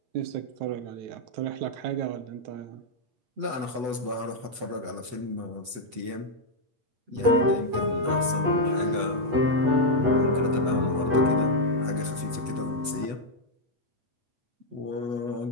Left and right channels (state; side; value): late; left; 8.0 ms